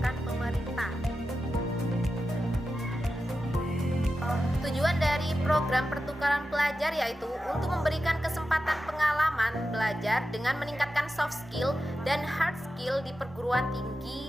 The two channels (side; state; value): both; normal; correlation 0.91